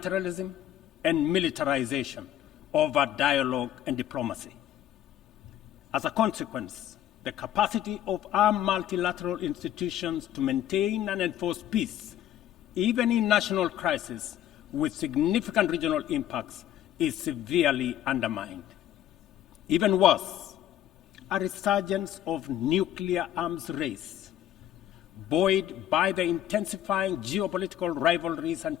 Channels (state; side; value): quieter; right; 11.8 dB